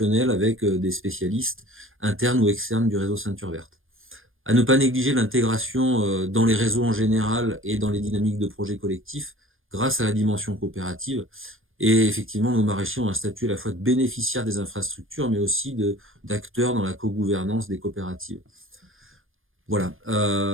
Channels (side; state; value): left; late; 0.59 ms